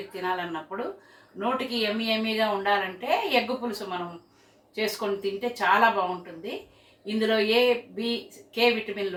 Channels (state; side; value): identical; both; correlation 1.00